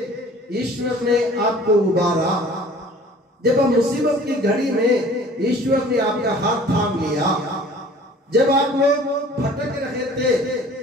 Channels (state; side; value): normal; both; correlation 0.49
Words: ईश्वर ने आपको उबारा। जब आप मुसीबत की घड़ी में, ईश्वर ने आपका हाथ थाम लिया। जब आप लोग भटक रहे थे,